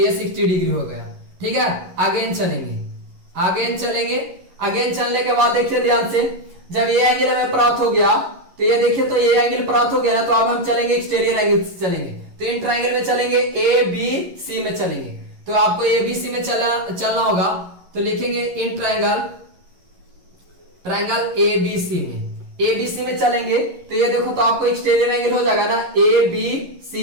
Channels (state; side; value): late; left; 11 ms